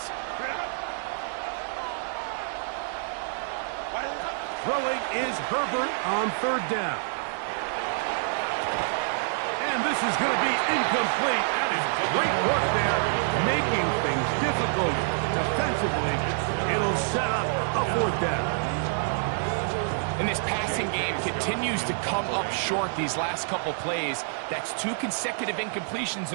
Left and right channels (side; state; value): left; silent; digital silence